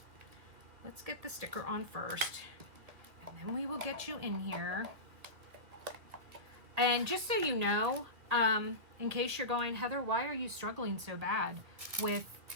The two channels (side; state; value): left; late; 2.1 ms